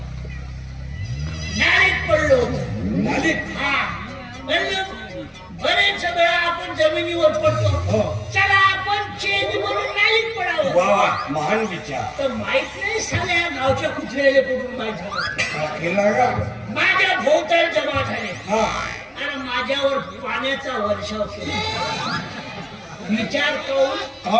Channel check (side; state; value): both; identical; correlation 1.00